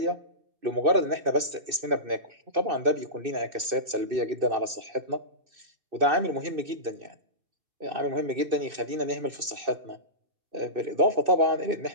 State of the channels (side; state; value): left; late; 2.6 ms